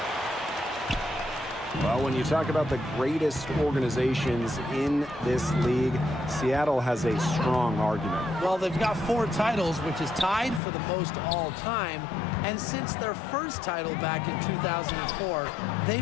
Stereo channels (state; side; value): drops out; right; at 10.6 s